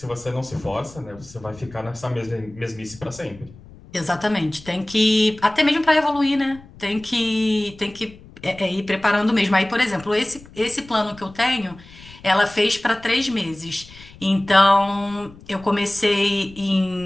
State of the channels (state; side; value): noise; left; rumble, 21 dB below the sound